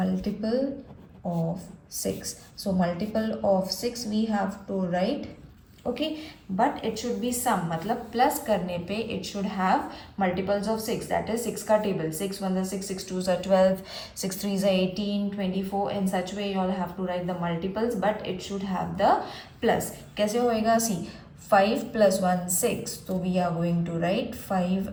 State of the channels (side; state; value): both; identical; correlation 1.00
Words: of 6. So multiple of 6 we have to write. Okay, but it should be sum, मतलब plus करने पे it should have multiples of 6, that is 6 का table. 6 1 is 6, 6 2 is 12, 6 3 is 18, 24. In such way you all have to write the multiples, but it should have the plus. कैसे होएगा? See, 5 plus 1 6, so we are going to write 5